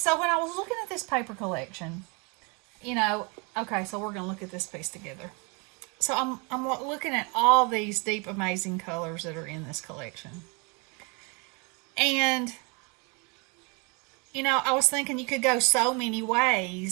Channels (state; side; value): quieter; left; 31.5 dB